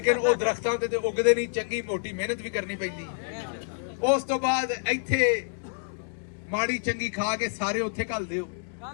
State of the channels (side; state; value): right; silent; digital silence